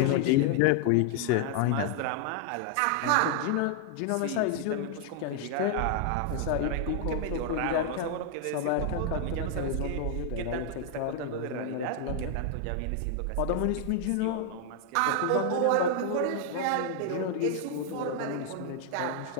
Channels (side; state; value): both; different; correlation 0.00